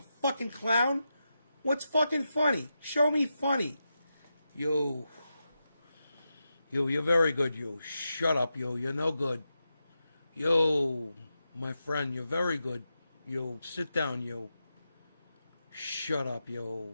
fucking clown? What's fucking funny? Show me funny. Yo, you're very good. Yo, shut up. Yo, you're no good. Yo, my friend, you're very good. Yo, sit down. Yo, shut up. Yo.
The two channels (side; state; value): both; inverted; correlation -0.89